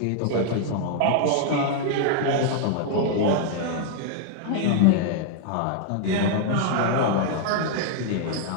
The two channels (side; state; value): both; different; correlation 0.00